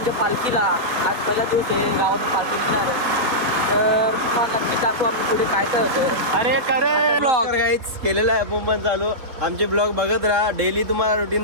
पालखीला. आज पहिला दिवस आहे गावातून पालखी निघणार आहे. तर तुम्हाला नक्की दाखवू आम्ही पुढे काय काय होतं. अरे करे ब्लॉग गाईच केलेला आहे मुंबई चालू. आमचे ब्लॉग बघत राहा, डेली तुम्हाला रुटीन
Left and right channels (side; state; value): left; late; 3.7 ms